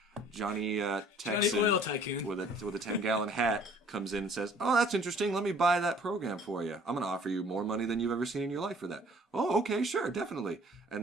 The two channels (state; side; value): normal; both; correlation 0.55